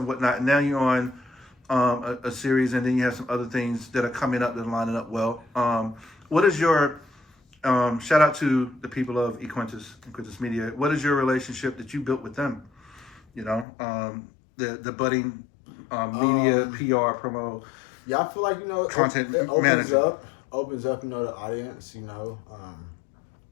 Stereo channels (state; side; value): drops out; right; at 13.7 s